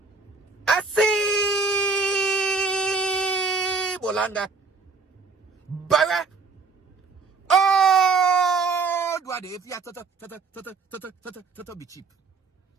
I see Bolanga. Bara. Oh, do I if you to be cheap.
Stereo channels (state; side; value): quieter; left; 4.4 dB